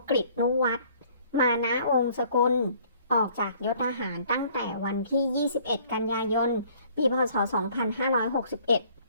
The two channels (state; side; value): inverted; both; correlation -0.58